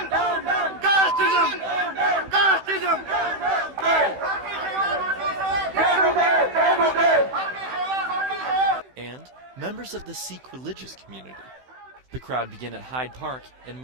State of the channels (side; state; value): left; late; 16 ms